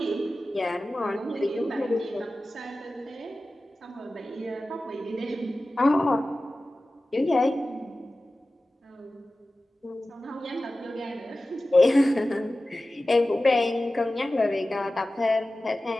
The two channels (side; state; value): both; normal; correlation 0.95